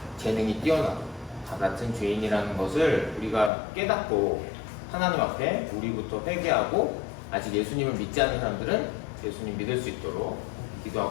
재능이 뛰어나도 다 같은 죄인이라는 것을 우리가 깨닫고 하나님 앞에 우리부터 회개하고, 아직 예수님을 믿지 않는 사람들은 예수님 믿을 수 있도록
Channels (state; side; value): drops out; right; at 3.5 s